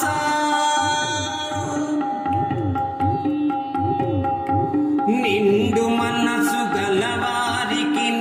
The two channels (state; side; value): identical; both; correlation 1.00